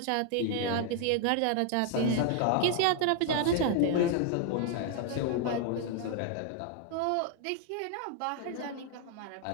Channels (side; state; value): both; different; correlation 0.00